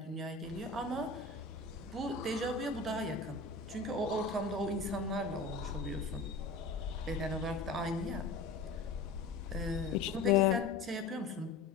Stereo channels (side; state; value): right; quieter; 3.7 dB